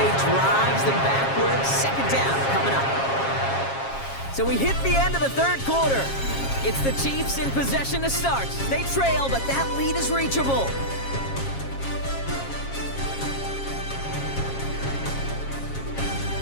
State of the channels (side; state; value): right; late; 7.4 ms